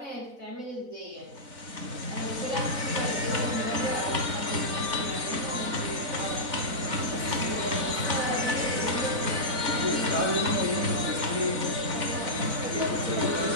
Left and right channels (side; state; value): left; late; 4.0 ms